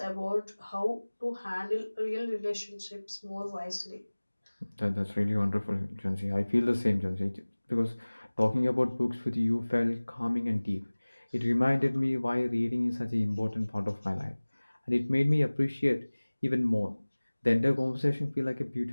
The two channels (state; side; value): inverted; both; correlation -1.00